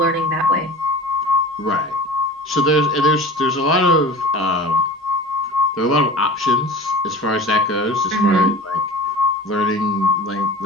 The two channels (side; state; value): both; normal; correlation 0.38